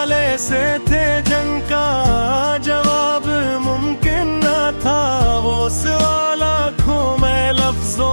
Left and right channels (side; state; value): both; inverted; correlation -1.00